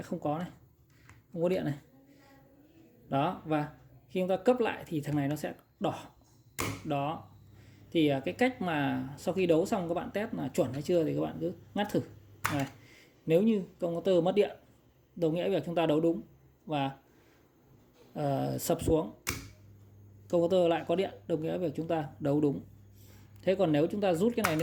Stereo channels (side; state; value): both; identical; correlation 1.00